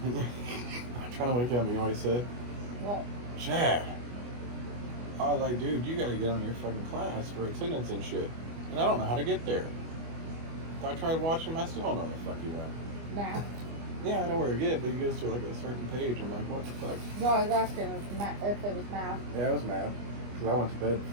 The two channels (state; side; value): late; left; 25 ms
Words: I'm trying to wake up, you know what he said? What? Chad. I was like, dude, you gotta get on your fucking class for attendance and shit. And I don't know how to get there. If I tried watching him, I still don't know where the fuck he went. Math? Yeah, I know where to get, but he goes to like a certain page. I'm like, what the fuck? No, I was asking if it was math. Yeah, it was math. Because I went to bed